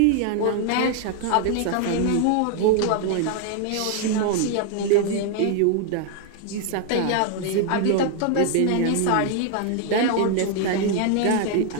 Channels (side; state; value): both; different; correlation 0.00